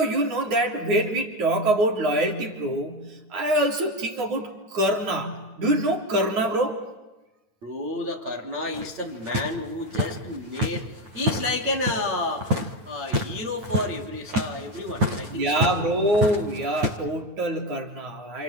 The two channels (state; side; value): late; left; 9.4 ms